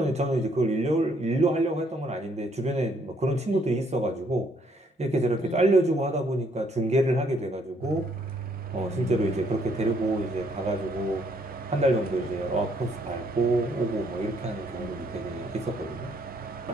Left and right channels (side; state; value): both; normal; correlation 0.68